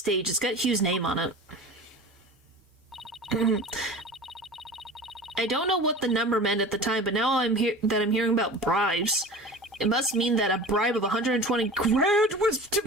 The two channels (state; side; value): normal; both; correlation 0.36